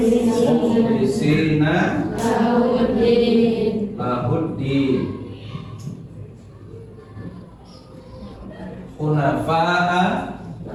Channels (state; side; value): identical; both; correlation 1.00